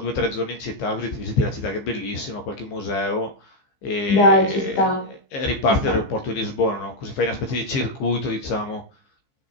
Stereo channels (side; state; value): right; late; 15 ms